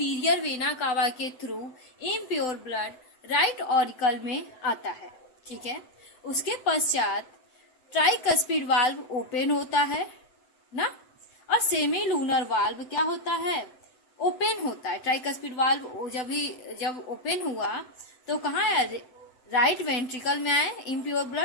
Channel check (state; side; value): late; right; 7.9 ms